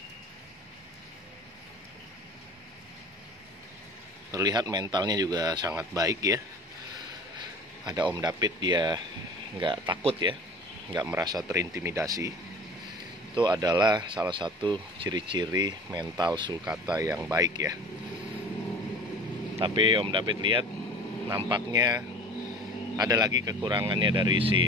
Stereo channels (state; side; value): normal; both; correlation 0.42